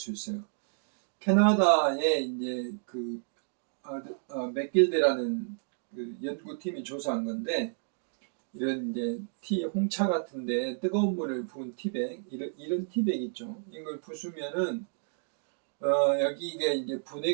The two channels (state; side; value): silent; left; digital silence